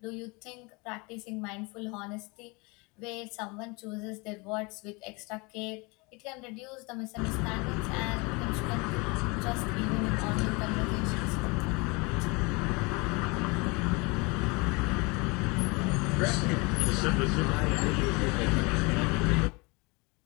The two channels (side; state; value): right; quieter; 27.7 dB